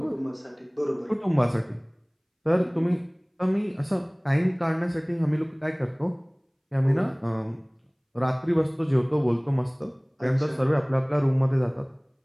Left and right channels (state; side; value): identical; both; correlation 1.00